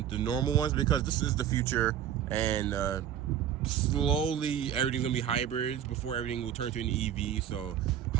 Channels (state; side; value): quieter; left; 9.9 dB